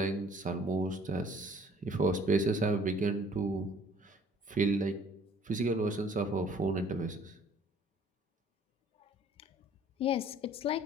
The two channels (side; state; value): both; normal; correlation 0.55